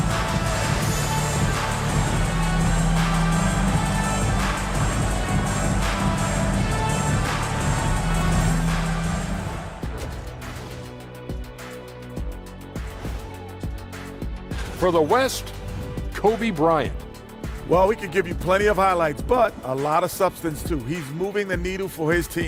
for the West, Kobe Bryant. Well, we could give you plenty of highlights, but a lot of substance too. He's moving the needle for his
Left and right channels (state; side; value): identical; both; correlation 1.00